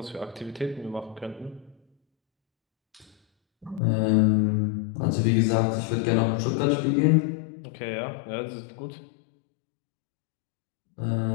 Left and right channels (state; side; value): drops out; right; at 3.8 s